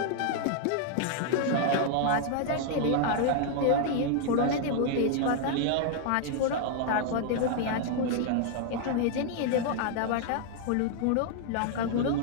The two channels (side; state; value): both; different; correlation 0.00